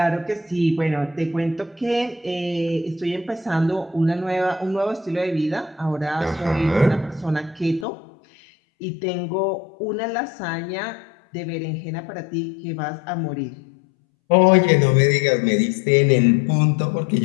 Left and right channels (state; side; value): drops out; right; at 7.9 s